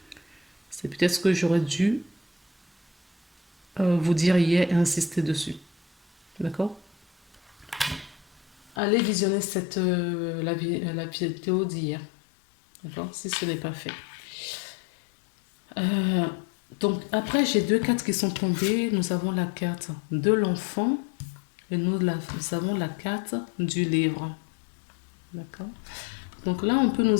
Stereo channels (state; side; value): drops out; right; at 8.8 s